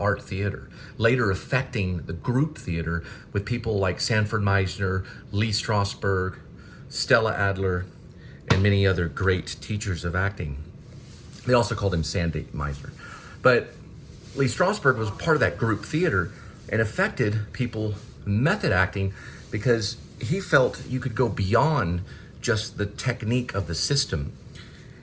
Theater, later affecting the group theater with people like Sanford Meisner, Lee Strasberg, Stella Adler, and many other great teachers of acting. They also called him Sandy Meisner. But Lee Strasberg was part of that group theater and affected people method acting, because he felt you could go beyond just the technique of the system,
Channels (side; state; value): both; identical; correlation 1.00